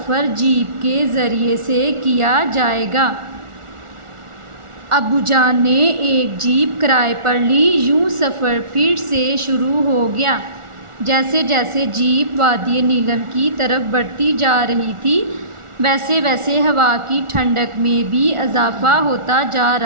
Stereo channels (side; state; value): left; late; 1.4 ms